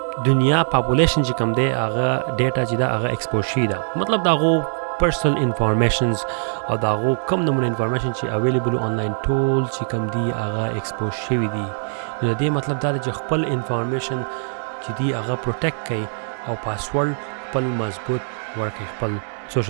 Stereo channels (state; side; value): silent; left; digital silence